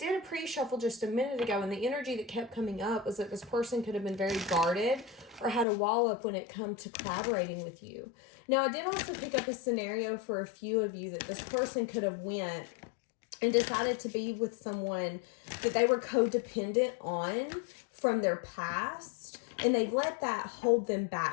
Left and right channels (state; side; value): drops out; right; at 5.7 s